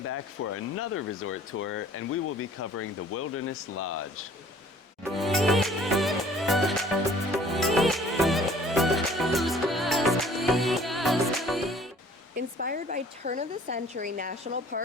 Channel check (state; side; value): normal; both; correlation 0.53